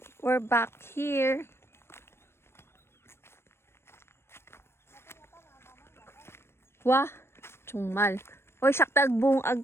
We're back here. Wah, chungmal. Oy, sakta agbong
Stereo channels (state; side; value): late; right; 0.12 ms